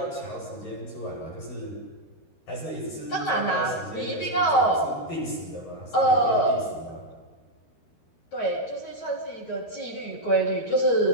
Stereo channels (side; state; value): right; late; 13 ms